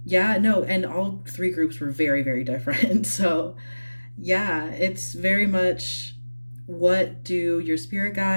yeah, no, and all three groups were very, very different. So yeah, it's very much what do your spirit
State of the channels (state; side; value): inverted; both; correlation -1.00